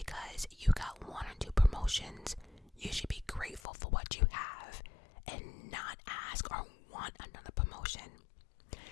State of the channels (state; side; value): drops out; right; at 3.6 s